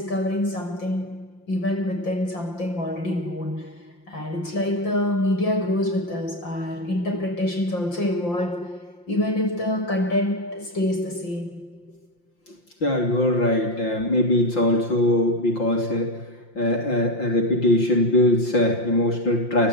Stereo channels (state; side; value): late; right; 5.8 ms